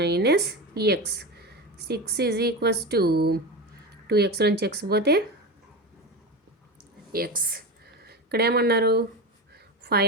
X. 6 is equals to 2x నుంచి ఎక్స్ పోతే ఎక్స్. ఇక్కడ ఏమన్నారు?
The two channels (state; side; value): normal; both; correlation 0.22